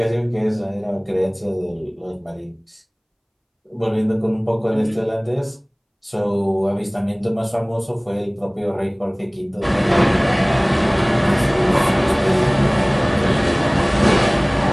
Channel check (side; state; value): both; identical; correlation 1.00